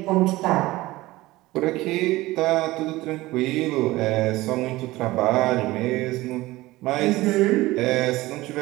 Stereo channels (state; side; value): quieter; left; 18.7 dB